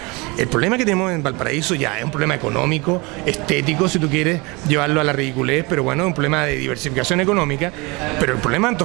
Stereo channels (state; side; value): quieter; left; 26.2 dB